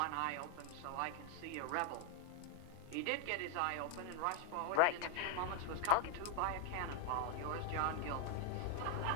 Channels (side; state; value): both; different; correlation 0.00